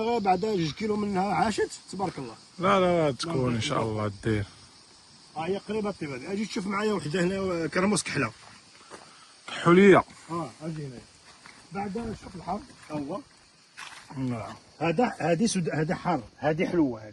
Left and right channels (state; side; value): identical; both; correlation 1.00